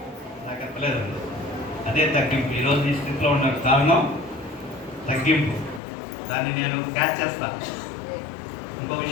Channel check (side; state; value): right; drops out; at 5.8 s